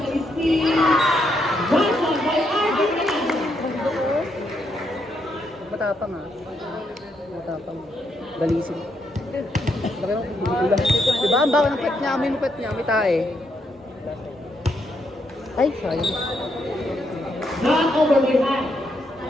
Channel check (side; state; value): both; normal; correlation 0.77